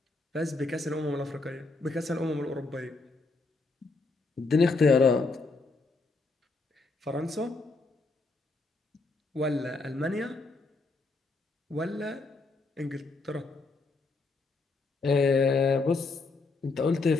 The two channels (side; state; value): right; quieter; 3.6 dB